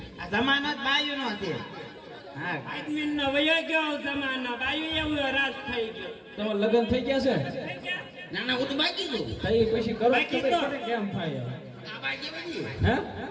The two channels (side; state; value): both; identical; correlation 1.00